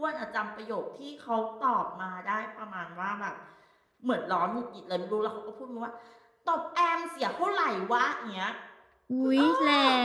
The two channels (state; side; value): identical; both; correlation 1.00